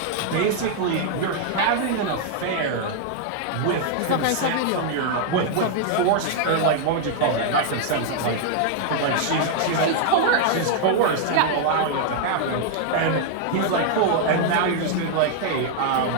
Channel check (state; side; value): different; both; correlation -0.01